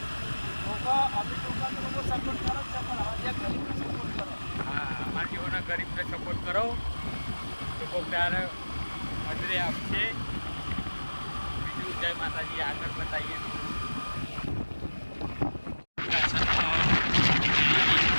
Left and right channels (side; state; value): both; inverted; correlation -1.00